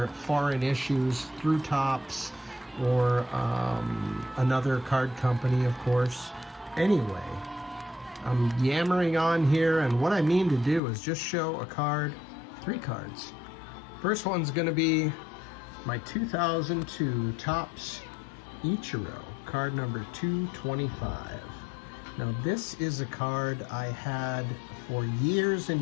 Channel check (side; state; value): right; drops out; at 10.8 s